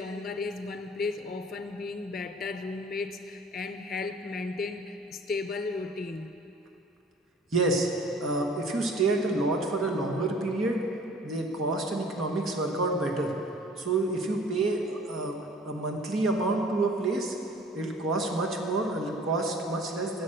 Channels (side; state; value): both; normal; correlation 0.49